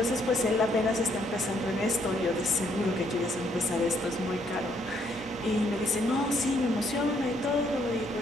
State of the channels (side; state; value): both; normal; correlation 0.70